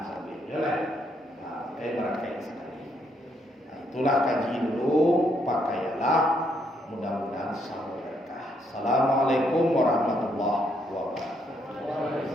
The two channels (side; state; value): both; normal; correlation 0.74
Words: Bisa betul. Barakai sekali. Nah, itulah kaji dulu, pakailah. Mudah-mudahan sama berkah. Assalamualaikum warahmatullahi